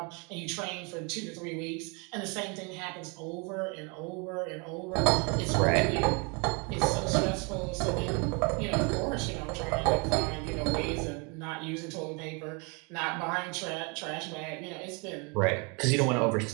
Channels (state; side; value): quieter; left; 32.0 dB